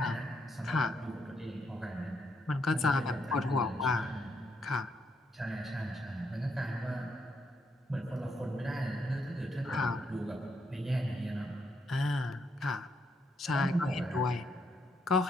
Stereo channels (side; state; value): both; normal; correlation 0.77